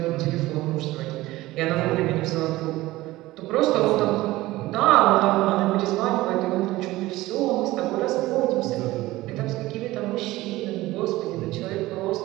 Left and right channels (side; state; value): left; quieter; 17.9 dB